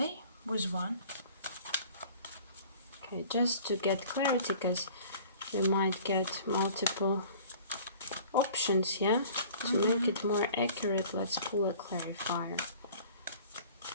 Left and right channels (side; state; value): both; inverted; correlation -0.48